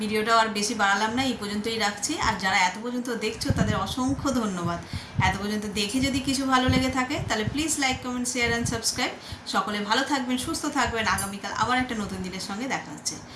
আর বেশি বাড়ালাম না, এই পর্যন্তই রাখছি। আর যারা এত পর্যন্ত দেখছো তাদের অসংখ্য ধন্যবাদ। এত পর্যন্ত দেখে যদি কিছু ভালো লেগে থাকে তাহলে please like, comment, share and subscribe. সকলে ভালো থাকবেন, সুস্থ থাকবেন। আগামীকাল আবার একটা নতুন দিনের সঙ্গে দেখা হচ্ছে।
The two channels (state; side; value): identical; both; correlation 1.00